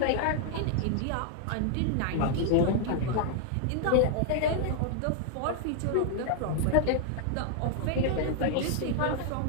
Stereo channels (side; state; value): both; different; correlation 0.00